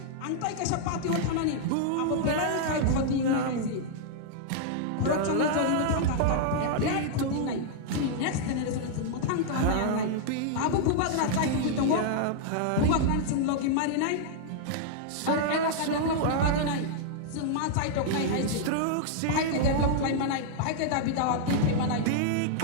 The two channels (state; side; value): different; both; correlation -0.01